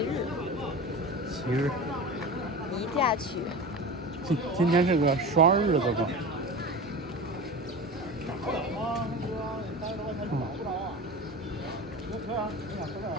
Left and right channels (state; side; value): normal; both; correlation 0.31